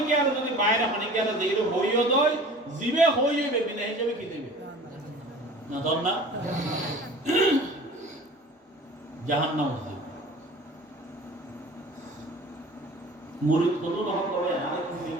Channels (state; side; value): normal; both; correlation 0.43